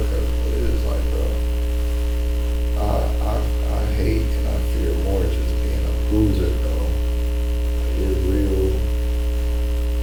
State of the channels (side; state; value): both; identical; correlation 1.00